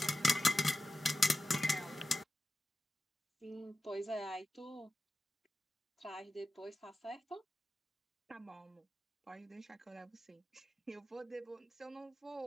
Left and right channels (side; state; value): both; normal; correlation 0.93